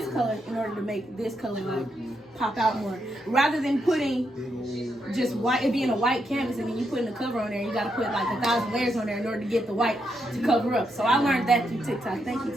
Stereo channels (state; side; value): normal; both; correlation 0.81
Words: color in order to make this color like pop out more. Rather than putting just white, it being a white canvas and then you putting the cover on there, you gotta put like 1,000 layers on there in order to get the white to cover up. So I learned that through TikTok. Thank you,